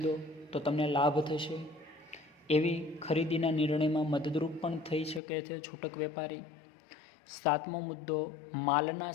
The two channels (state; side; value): drops out; right; at 5.2 s